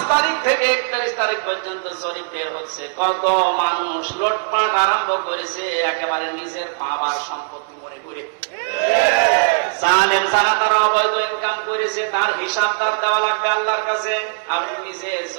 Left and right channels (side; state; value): left; silent; 66 dB below the other